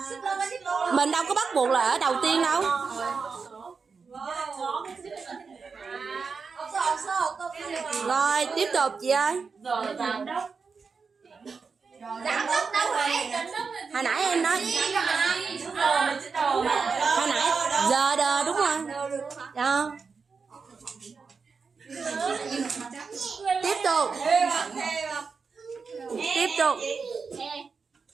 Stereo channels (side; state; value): left; quieter; 5.1 dB